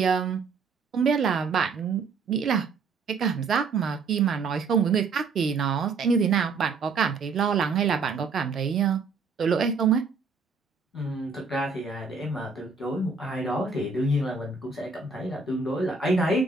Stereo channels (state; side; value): quieter; left; 4.7 dB